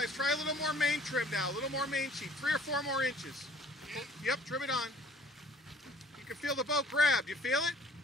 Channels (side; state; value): both; normal; correlation 0.53